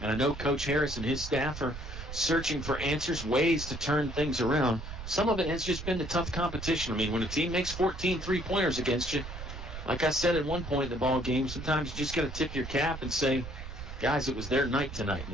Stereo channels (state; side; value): noise; right; rumble, 10 dB below the sound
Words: I know Coach Harris and his staff are searching for answers, ways to turn things around. Some of it has just been the tough competition. I mean, when a team makes 14 three-pointers against you, like I said at one point in the ball game, sometimes you just got to tip your cap and say, guys, it was their night tonight.